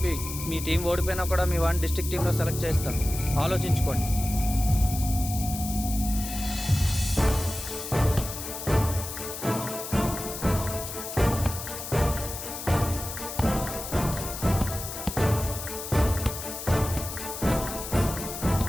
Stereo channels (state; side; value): noise; left; hiss, 8 dB below the sound